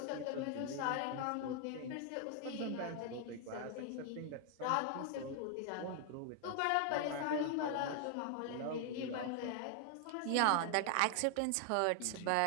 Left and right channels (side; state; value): both; different; correlation 0.00